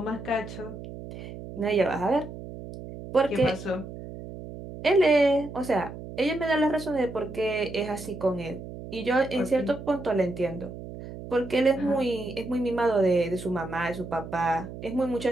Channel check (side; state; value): right; noise; hum, 11 dB below the sound